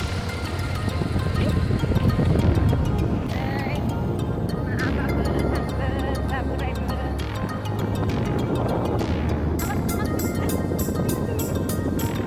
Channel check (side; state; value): both; identical; correlation 1.00